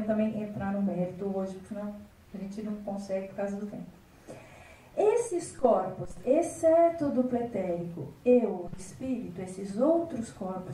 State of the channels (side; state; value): both; identical; correlation 1.00